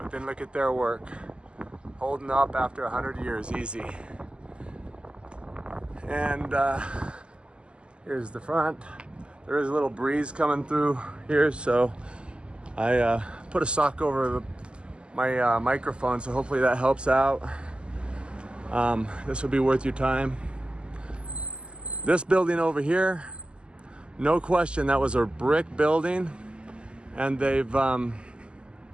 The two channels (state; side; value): late; left; 0.051 ms